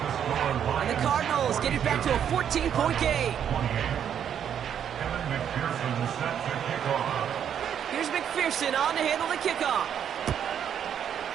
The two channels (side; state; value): left; quieter; 8.9 dB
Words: And the Cardinals get it back to a 14-point game. Evan McPherson set to kick off. Here's McPherson on to handle the kickoff.